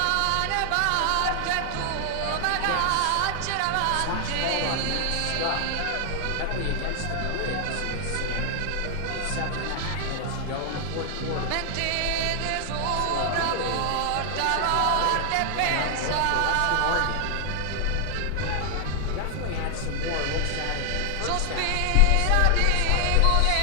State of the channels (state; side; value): different; both; correlation 0.00